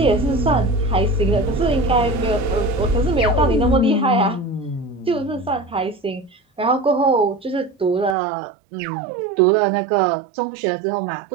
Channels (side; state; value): left; drops out; at 8.2 s